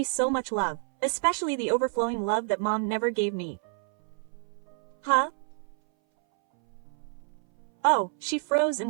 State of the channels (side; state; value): left; silent; 59 dB below the other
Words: so much love, especially the overflowing love that Mom never gave me. Huh? Oh, she froze and